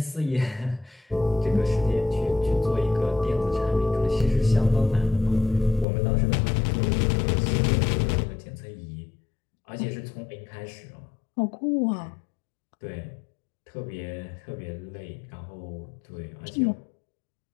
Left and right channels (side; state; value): right; drops out; at 5.9 s